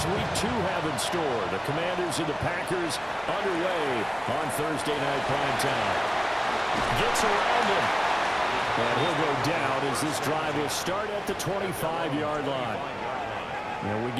Week 2 have in store? The Commanders and the Packers underway on Thursday night primetime. Gets around him. And he'll go down as this drive will start at the 25-yard line. And we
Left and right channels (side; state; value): both; identical; correlation 1.00